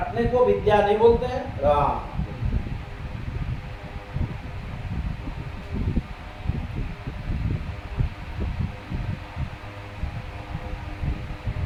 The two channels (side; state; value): both; identical; correlation 1.00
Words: को विद्या नहीं बोलते हैं। हाँ